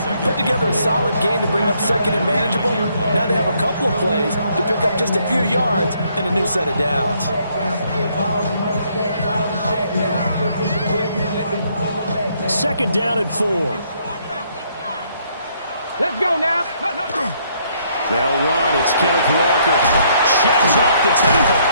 put together a solid game to bring up 2nd and manageable. Now they have a couple of plays to pick up just a few yards and a new set of downs. 2nd down and 4. Let's go now. They'll run. It's Kenneth Walker. Sheds off the tackle.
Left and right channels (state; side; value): inverted; both; correlation -0.69